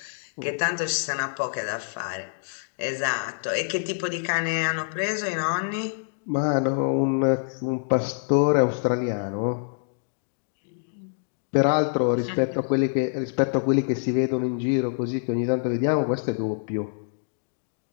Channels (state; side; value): silent; right; digital silence